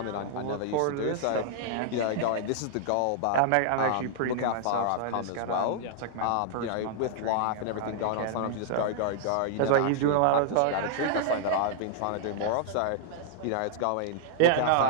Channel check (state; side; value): different; both; correlation -0.01